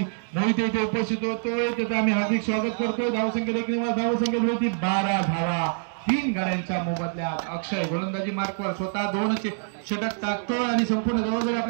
मोहिते इथे उपस्थित होतोय. त्याचं आम्ही हार्दिक स्वागत करतोय. धावसंख्या देखील धावसंख्या होती 12 धावा 3 गड्यांच्या मोबदल्यात. अक्षय गोलंदाजी मार्कवर स्वतः 2 षटक टाकतोय आणि संपूर्ण जबाबदारी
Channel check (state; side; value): silent; left; digital silence